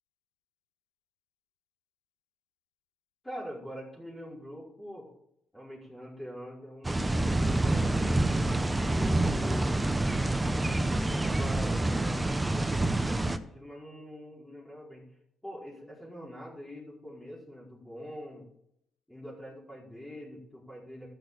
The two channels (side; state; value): both; normal; correlation 0.96